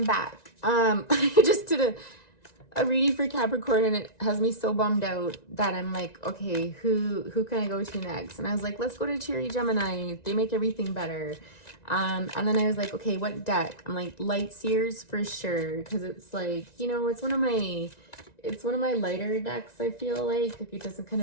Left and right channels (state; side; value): late; right; 1.9 ms